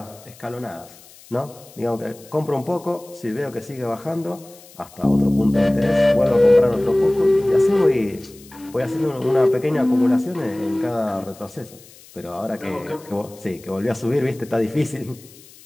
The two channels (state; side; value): noise; left; hiss, 23 dB below the sound